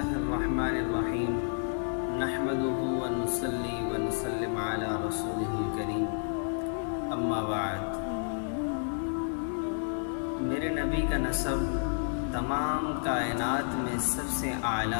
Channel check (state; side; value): silent; right; 56 dB below the other